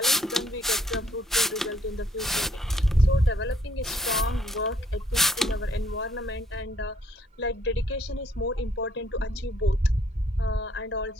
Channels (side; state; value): both; normal; correlation 0.66